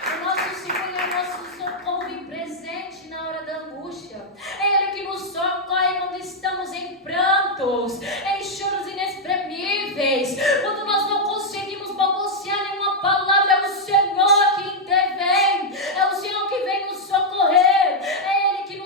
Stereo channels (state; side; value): normal; both; correlation -0.02